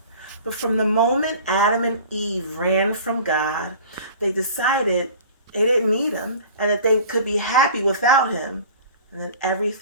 But from the moment Adam and Eve ran from God, they decided they didn't need him and that they could be happy without him. And then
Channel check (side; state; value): both; inverted; correlation -0.43